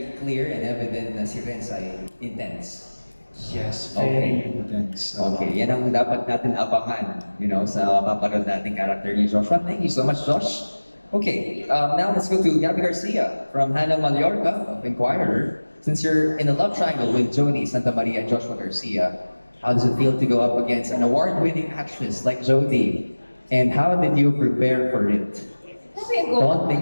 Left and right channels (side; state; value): both; inverted; correlation -1.00